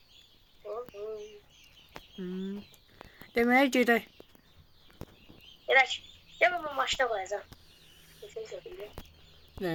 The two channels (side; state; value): both; identical; correlation 1.00